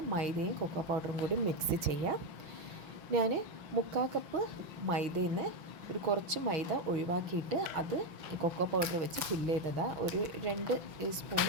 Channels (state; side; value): late; left; 5.9 ms